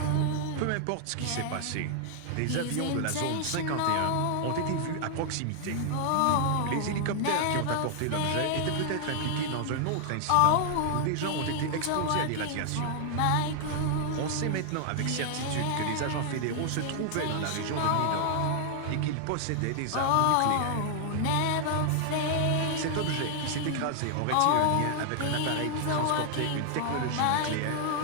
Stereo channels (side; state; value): both; different; correlation 0.00